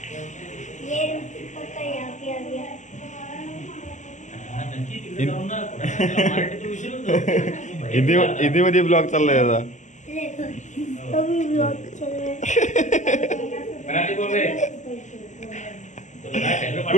हिंदी मध्ये ब्लॉग चाललाय आता.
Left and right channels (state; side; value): late; right; 0.35 ms